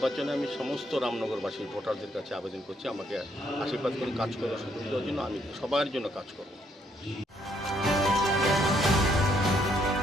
আমি সমস্ত রামনগরবাসী ভোটারদের কাছে আবেদন করছি আমাকে আশীর্বাদ করে কাজ করার সুযোগ দেওয়ার জন্য। আমি সবার জন্য কাজ করব।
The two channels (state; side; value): normal; both; correlation 0.71